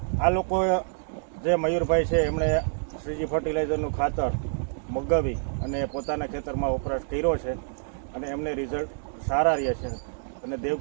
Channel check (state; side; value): silent; left; 60 dB below the other